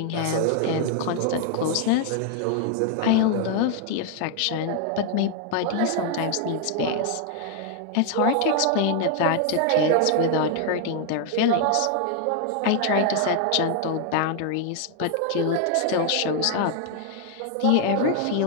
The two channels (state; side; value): different; both; correlation 0.00